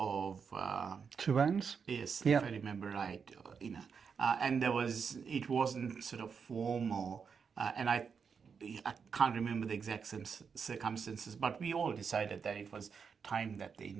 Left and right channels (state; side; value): quieter; left; 6.1 dB